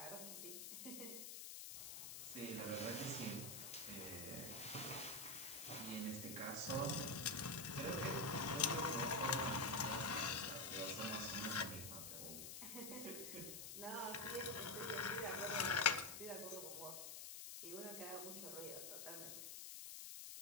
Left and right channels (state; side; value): noise; left; hiss, 7 dB below the sound